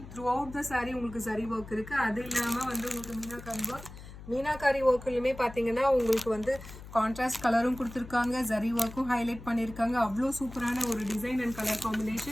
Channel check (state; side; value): noise; left; hum, 15 dB below the sound